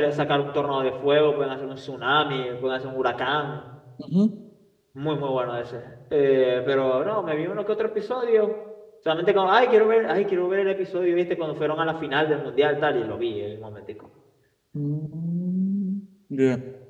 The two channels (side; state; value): both; identical; correlation 1.00